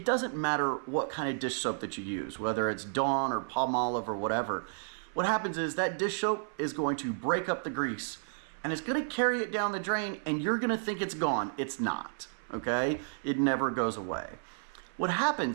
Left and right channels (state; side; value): silent; left; 55 dB below the other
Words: doesn't matter what kind of dish soap that you use, whether it's Dawn or Palmolive or whatever. What happens is that dish soap is going to break up the grease and it's going to carry it down the drain and you're going to think it's gone. It's not, okay? It never goes away. What